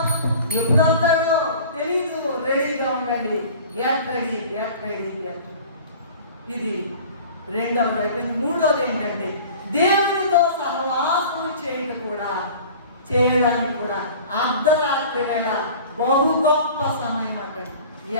ఎప్పుడంటాడో తెలీదు. రెడీగా ఉండండి. Get ready, get ready, get. ఇది రెండవది అయిపోయింది. మూడవది ఏంటంటే దేవునితో సహవాసం చేయడానికి కూడా అర్ధరాత్రి వేళ బహు గొప్ప సమయం అంటే.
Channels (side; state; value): both; inverted; correlation -0.43